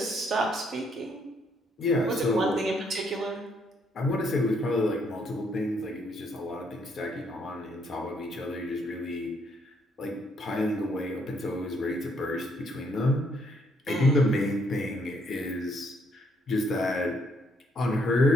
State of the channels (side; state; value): both; normal; correlation 0.71